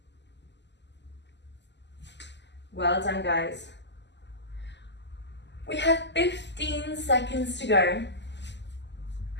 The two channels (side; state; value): right; late; 0.51 ms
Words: Well done, guys. We have 15 seconds to go.